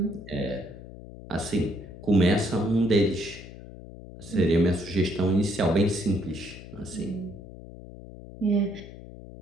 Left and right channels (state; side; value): noise; left; hum, 15 dB below the sound